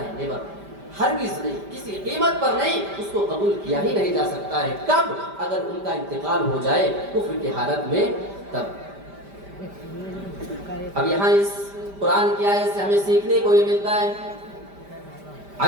نیور. ہرگز نہیں، کسی قیمت پر نہیں، اس کو قبول کیا ہی نہیں جا سکتا ہے. کب؟ اگر ان کا انتقال ہو جائے کفر کی حالت میں، تب. اب یہاں اس قرآن کی آیت سے ہمیں سیکھنے کو یہ ملتا ہے،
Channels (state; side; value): late; left; 5.1 ms